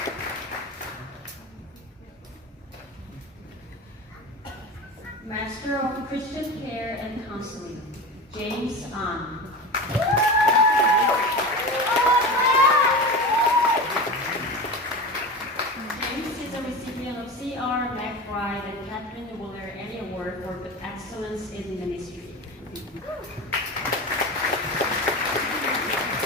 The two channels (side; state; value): both; normal; correlation 0.27